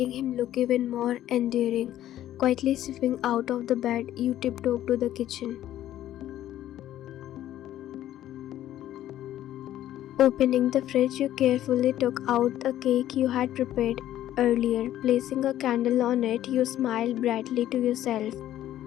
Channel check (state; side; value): quieter; right; 12.7 dB